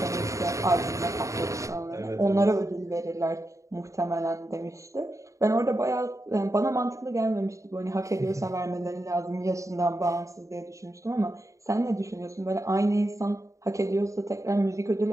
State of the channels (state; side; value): late; left; 0.15 ms